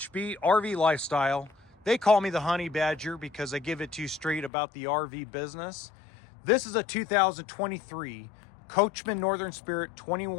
Lifestyle. They call me the Honey Badger because I give it to you straight about the RV business. This is a 2023 Coachmen Northern Spirit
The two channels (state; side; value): drops out; right; at 4.5 s